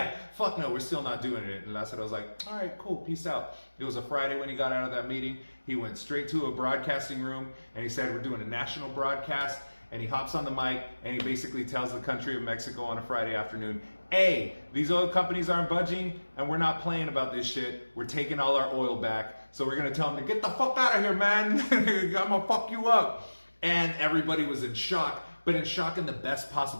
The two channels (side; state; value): both; inverted; correlation -1.00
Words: fuck no, we're still not doing it. And Lázaro's like, all right, cool, peace out. It was a Friday when he got out of that meeting. He went straight to a broadcasting room and he said, we're doing a national broadcast. And he hops on the mic and he basically tells the country of Mexico on a Friday afternoon, hey, these oil companies aren't budging and we're not playing about this shit. We're taking all our oil back. So we're going to tell them to get the fuck out of here, man. I'm going to fuck you up. And everybody was in shock, but in shock in the best